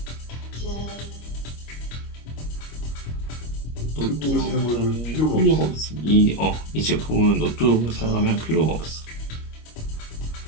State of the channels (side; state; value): right; late; 25 ms